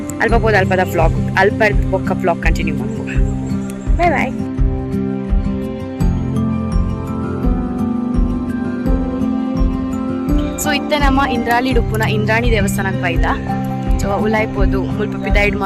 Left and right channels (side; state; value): both; identical; correlation 1.00